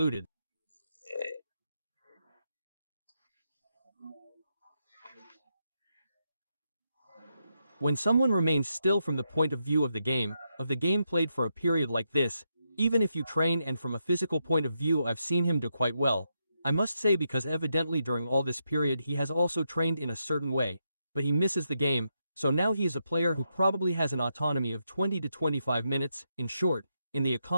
When someone remains still from the point of view of the game played for a period like this, even if you train and from a physical point of view I've seen him do quite well, I must say because evidently during all this period he has also trained in a certain way, but he misses the game, so now he is a player who probably has an autonomy of 20 to 25 minutes, in short, in the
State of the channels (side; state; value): both; inverted; correlation -0.83